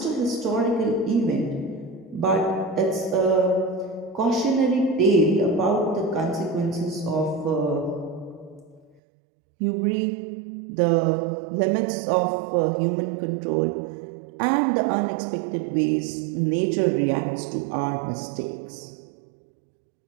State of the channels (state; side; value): drops out; left; at 9.0 s